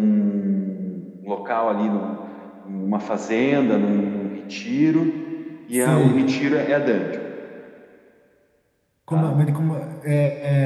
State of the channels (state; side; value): identical; both; correlation 1.00